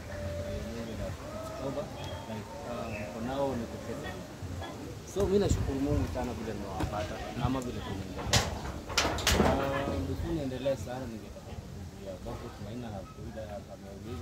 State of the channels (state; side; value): identical; both; correlation 1.00